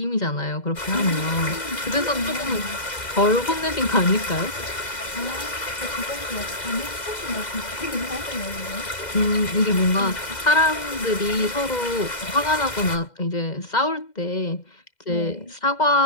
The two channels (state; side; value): late; right; 2.0 ms